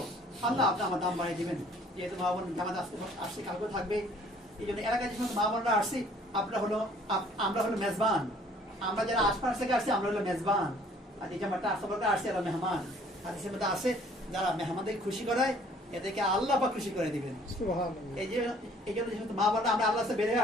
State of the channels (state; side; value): normal; both; correlation 0.57